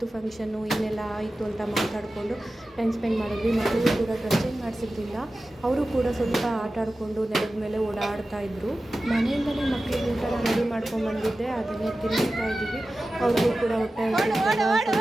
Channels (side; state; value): both; normal; correlation 0.94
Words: ಫಂಕ್ಷನ್ನು, ಏನೆಲ್ಲ ಆಯಿತು ಅಂತ ಮಾತಾಡಿಕೊಂಡು ಟೈಮ್ ಸ್ಪೆಂಡ್ ಮಾಡಿದ್ವಿ. ಮಕ್ಕಳು ಕೂಡ ಡ್ರೆಸ್ ಚೇಂಜ್ ಮಾಡಿಸಿದ್ರಿಂದ ಅವರು ಕೂಡ ಸ್ವಲ್ಪ ಆಟ ಆಡಿಕೊಂಡು ನೆಲದ ಮೇಲೆ ಓಡಾಡ್ತಾ ಇದ್ದರು. ಮನೆಯಿಂದಲೇ ಮಕ್ಕಳಿಗೆ ಊಟ ರೆಡಿ ಮಾಡ್ಕೊಂಡ್ಬಂದಿದ್ದೆ, ಅದನ್ನೇ ತಿನ್ನಿಸ್ತಾ ಇದ್ದೀವಿ. ಅವ್ರಿಗೂ ಕೂಡ ಹೊಟ್ಟೆ ಹಸಿದಾಗ